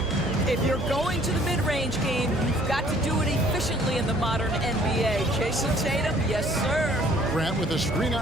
If you're going to the mid-range game, you've got to do it efficiently in the modern NBA. Jason Tatum, yes, sir. Grant with a screen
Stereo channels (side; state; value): right; noise; hum, 8 dB below the sound